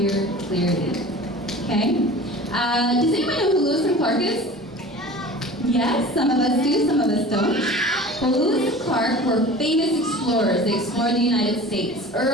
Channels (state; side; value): normal; both; correlation 0.40